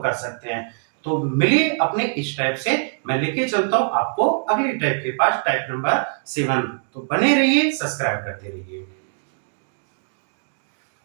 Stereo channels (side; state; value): left; silent; 64 dB below the other